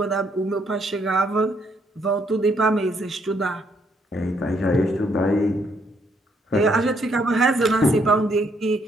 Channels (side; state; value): both; normal; correlation 0.72